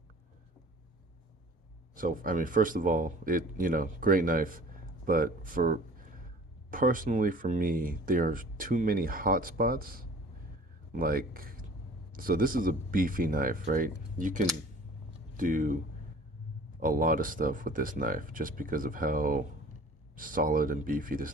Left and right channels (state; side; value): normal; both; correlation 0.46